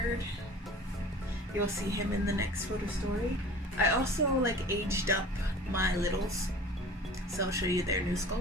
You'll see him in the next photo story. I also like aged up my littles, so I'll show you their new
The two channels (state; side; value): normal; both; correlation 0.42